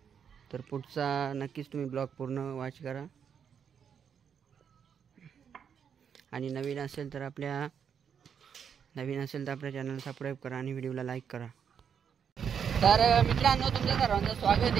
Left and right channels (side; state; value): left; quieter; 7.5 dB